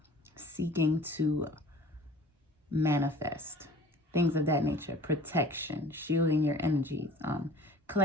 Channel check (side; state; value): both; normal; correlation 0.45